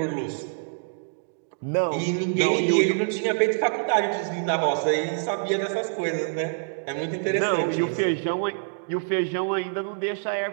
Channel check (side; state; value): left; silent; digital silence